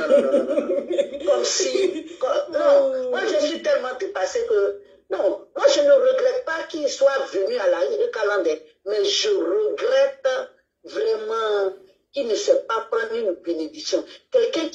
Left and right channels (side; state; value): both; identical; correlation 1.00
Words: Comme si... non, moi je suis tellement dépassée que... Non, moi je ne regrette pas qu'il soit venu à la Eucaland, mais je regrette vraiment qu'il ne sait pas prendre une bénédiction. Quelqu'un